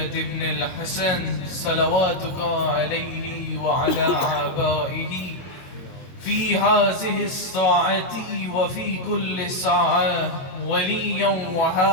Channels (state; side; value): late; right; 23 ms